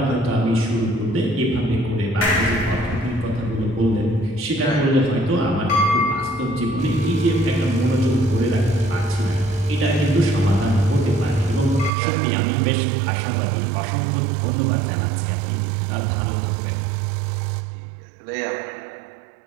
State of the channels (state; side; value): drops out; left; at 11.9 s